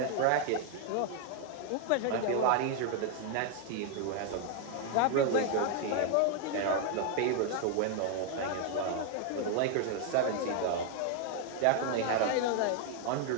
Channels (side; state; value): both; different; correlation 0.00